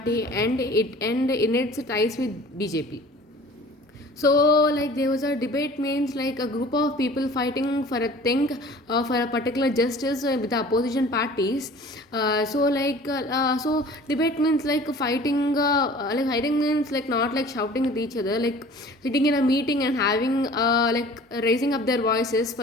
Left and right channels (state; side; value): normal; both; correlation 0.46